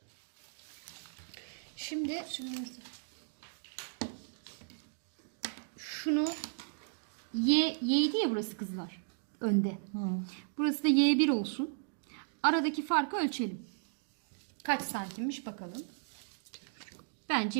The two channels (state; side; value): silent; left; digital silence